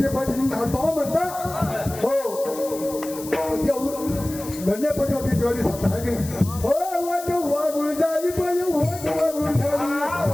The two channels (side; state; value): left; noise; hiss, 13 dB below the sound